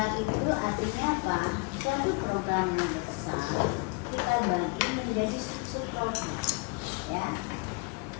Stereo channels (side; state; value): right; quieter; 31.6 dB